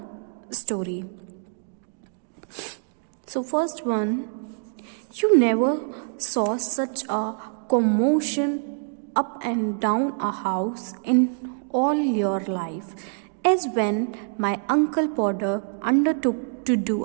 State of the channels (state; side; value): silent; left; digital silence